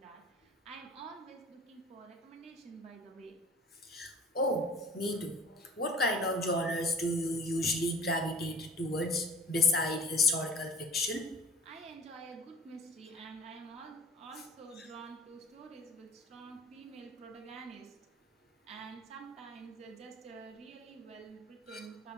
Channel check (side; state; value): both; normal; correlation 0.43